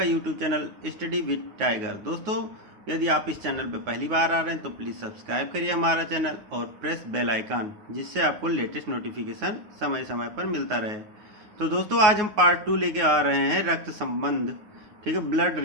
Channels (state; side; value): late; left; 9.5 ms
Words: YouTube channel study with tiger. दोस्तों, यदि आप इस चैनल पर पहली बार आ रहे हैं तो प्लीज़ सब्सक्राइब करिए हमारा चैनल और प्रेस बेल आइकन, जिससे आपको लेटेस्ट नोटिफिकेशन समय समय पर मिलता रहे। तो दोस्तों, आज हम पार्ट 2 लेके आ रहे हैं रक्त संबंध, ठीक है, ब्लड